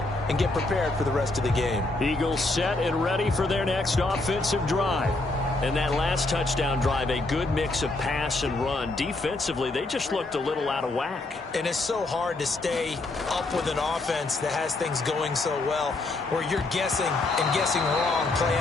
and get prepared for the rest of the game. Eagles set and ready for their next offensive drive. And that last touchdown drive, a good mix of pass and run. Defensively, they just looked a little out of whack. And it's so hard to stay up with an offense that has things going so well, where you're guessing and guessing wrong play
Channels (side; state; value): right; quieter; 3.1 dB